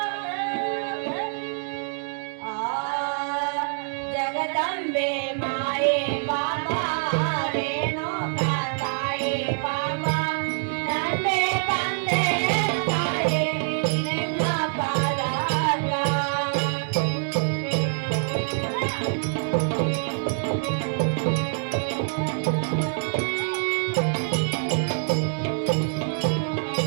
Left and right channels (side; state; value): left; silent; 61 dB below the other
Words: జగదంబే మాయే బాబా రేణుకా తాయే బాబా నందే తందే తాయే నిన్న పాదాగా